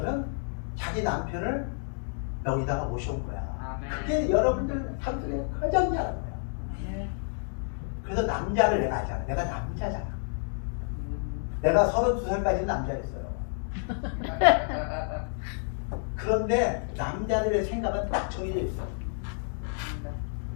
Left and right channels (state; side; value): silent; right; 58 dB below the other